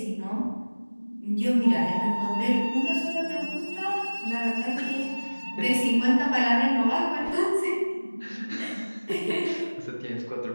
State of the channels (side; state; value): both; inverted; correlation -1.00